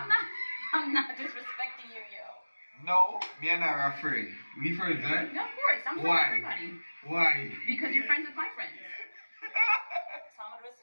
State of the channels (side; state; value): both; inverted; correlation -1.00